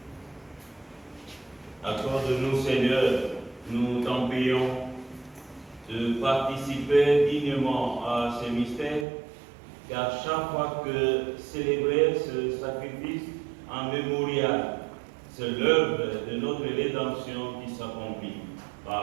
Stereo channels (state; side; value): drops out; left; at 9.1 s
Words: Accorde-nous, Seigneur, nous t'en prions, de participer dignement à ces mystères, car chaque fois que célébrer ce sacrifice en mémorial, c'est l'œuvre de notre rédemption qui s'accomplit